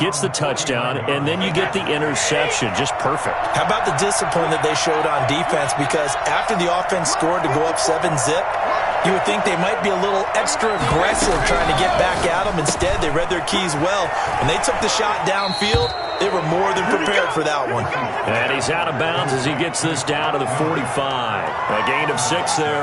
the touchdown, and then you get the interception. Just perfect. How about the discipline that they showed on defense? Because after the offense scored to go up 7-zip, you would think they might be a little extra aggressive trying to get back at them. Instead, they read their keys well. When they took the shot downfield, they were more than prepared for that one. And he's out of bounds as he gets this down to the 45. A gain of 6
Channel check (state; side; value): identical; both; correlation 1.00